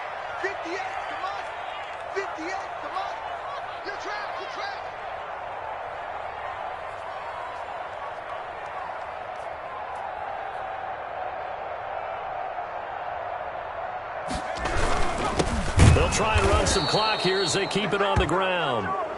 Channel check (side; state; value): both; identical; correlation 1.00